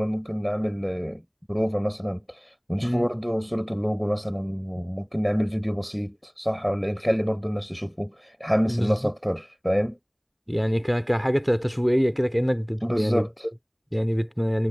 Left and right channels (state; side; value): identical; both; correlation 1.00